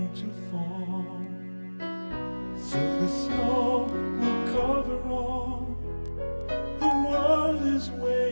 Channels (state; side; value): inverted; both; correlation -1.00